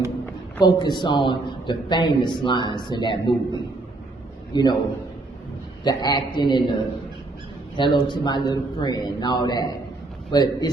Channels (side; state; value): left; quieter; 3.0 dB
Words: focus on the famous lines in that movie. You know, the acting and the hello to my little friend and all that. But